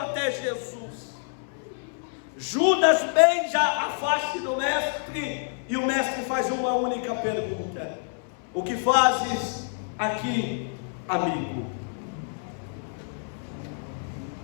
Jesus. Judas beija a face do mestre, e o mestre faz uma única pergunta: o que fazes aqui, amigo?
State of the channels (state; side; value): silent; right; 60 dB below the other